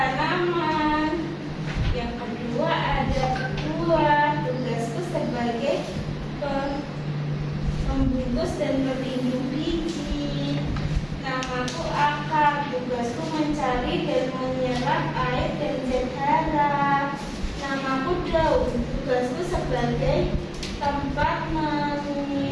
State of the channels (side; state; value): both; identical; correlation 1.00